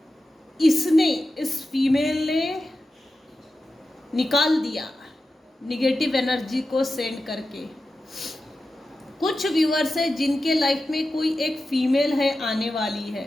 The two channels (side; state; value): both; normal; correlation 0.92